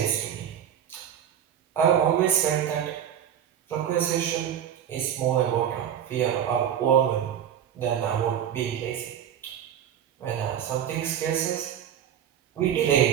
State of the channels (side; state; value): left; quieter; 9.6 dB